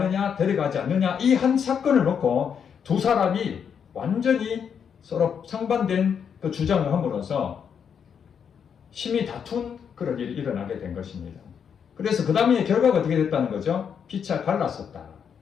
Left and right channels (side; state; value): right; quieter; 7.4 dB